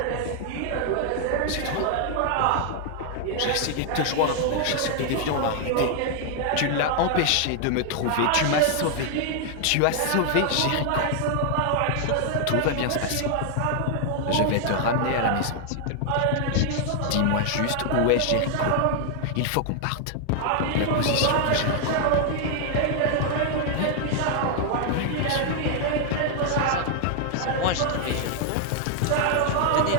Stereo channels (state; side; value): different; both; correlation 0.00